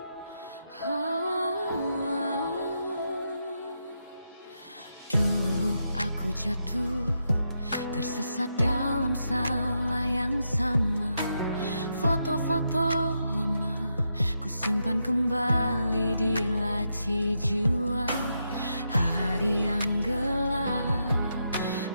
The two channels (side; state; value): both; inverted; correlation -0.83